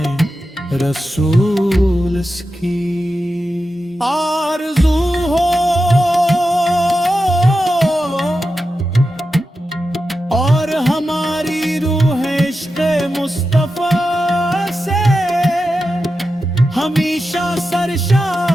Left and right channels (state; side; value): normal; both; correlation 0.91